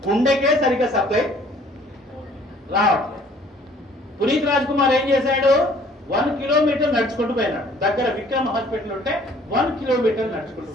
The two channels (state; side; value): normal; both; correlation 0.57